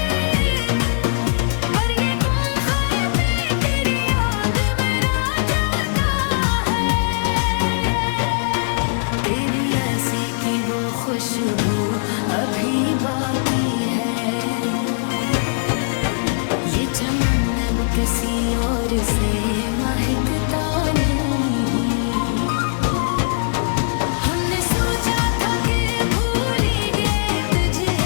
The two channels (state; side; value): silent; right; digital silence